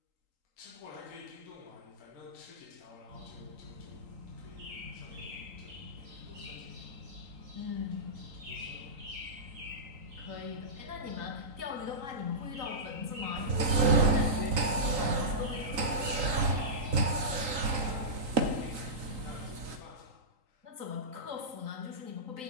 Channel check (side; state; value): left; late; 3.8 ms